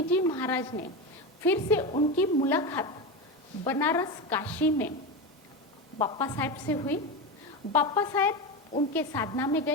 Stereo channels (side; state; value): both; normal; correlation 0.19